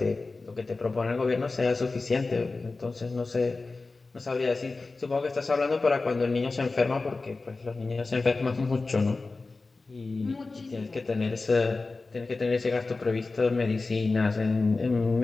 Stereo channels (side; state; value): right; quieter; 3.7 dB